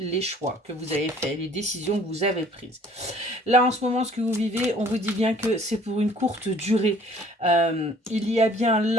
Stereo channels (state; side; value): normal; both; correlation 0.55